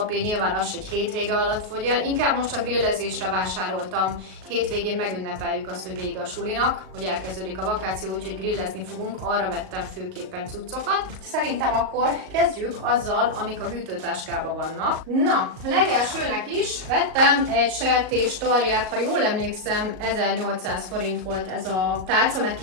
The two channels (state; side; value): late; left; 38 ms